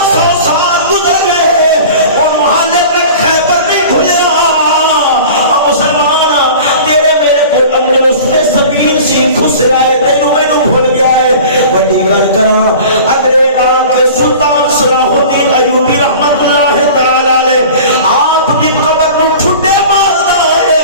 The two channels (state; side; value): inverted; both; correlation -0.40